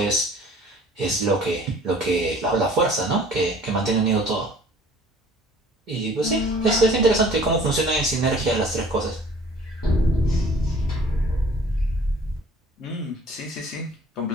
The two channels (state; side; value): normal; both; correlation 0.51